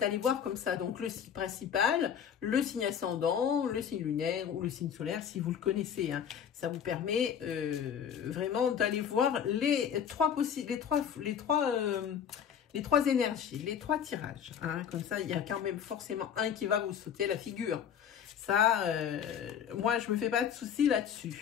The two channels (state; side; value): quieter; right; 8.3 dB